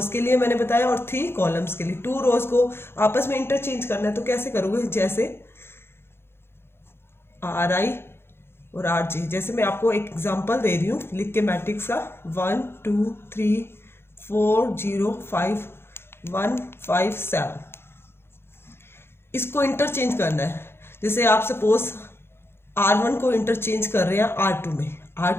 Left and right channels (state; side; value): late; right; 0.11 ms